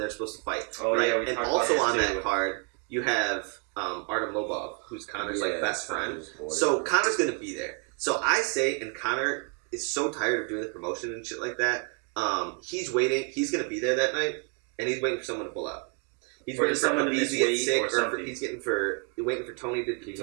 supposed to fight. Oh, right? yeah, we and talked also about on this, too. that card, you have Artem Lobov, who's Connor's like best friend. Connor's boy. So Connor's gonna be there. So I say, and Connor is so tired of doing the promotion and shit like that. He's waiting. He's gonna be there that night, and he's waiting for someone to pull out. He's waiting for someone to get sick, or he's waiting for Tony to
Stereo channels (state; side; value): quieter; left; 35.6 dB